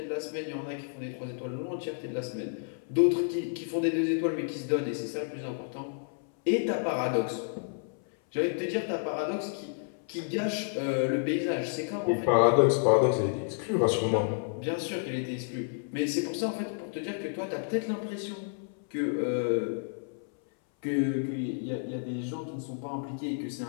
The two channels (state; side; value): silent; right; 57 dB below the other